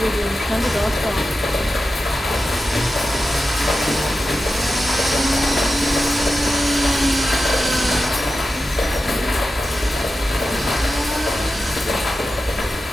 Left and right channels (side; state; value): both; normal; correlation 0.92